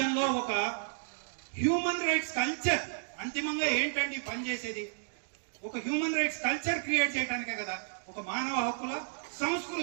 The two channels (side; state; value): left; silent; digital silence